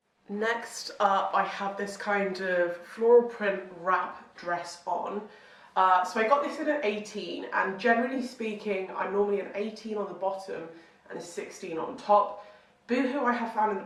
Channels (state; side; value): identical; both; correlation 1.00